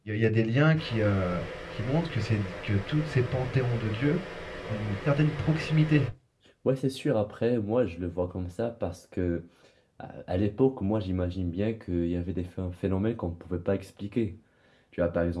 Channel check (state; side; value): identical; both; correlation 1.00